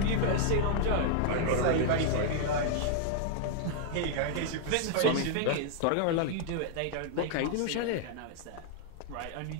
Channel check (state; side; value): different; both; correlation 0.00